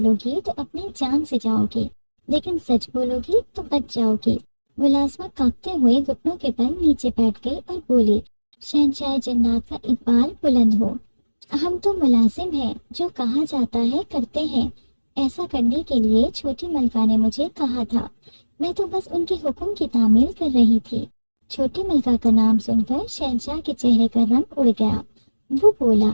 گی تو اپنی جان سے جاؤ گی، لیکن سچ بولو گی تو بچ جاؤ گی۔ ملازمہ کانپتے ہوئے گھٹنوں کے بل نیچے بیٹھ گئی اور بولی، شہنشاہ جنات کا اقبال بلند ہو، ہم تو ملازم ہیں، جو کہا جاتا ہے کرتے ہیں۔ ایسا کرنے کے لیے چھوٹی ملکہ نے مجھے کہا تھا، میں تو بس ان کے حکم کی تعمیل کر رہی تھی۔ چھوٹی ملکہ کا نام سن کر شہنشاہ کے چہرے کا رنگ اڑ گیا۔ وہ بولا،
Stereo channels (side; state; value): both; inverted; correlation -1.00